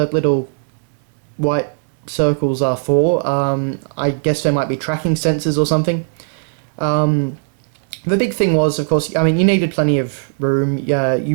little white circles are for. I guess they might be tracking sensors or something. The big thing was, of course, you needed plenty of room.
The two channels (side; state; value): left; silent; digital silence